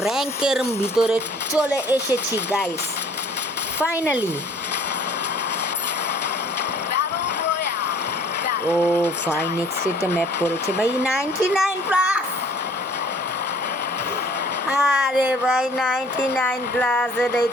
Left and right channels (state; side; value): normal; both; correlation 0.55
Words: র্যাঙ্কের ভিতরে চলে এসেছি গাইস ফাইনালি। ও ফাইন নেক্সট একটা ম্যাপ পড়েছে ভাই 99 প্লাস। আরে ভাই 99 প্লাস এটাই